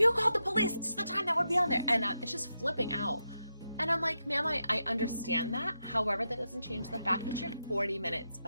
called the police, this is the time that would be on there. And it's just flipping out. And I'm like, ma'am, I understand that. However, that doesn't change the fact that you're 40 minutes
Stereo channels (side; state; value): both; inverted; correlation -0.86